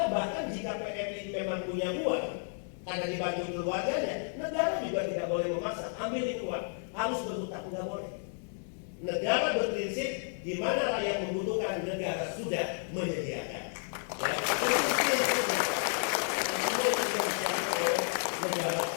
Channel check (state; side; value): silent; right; 56 dB below the other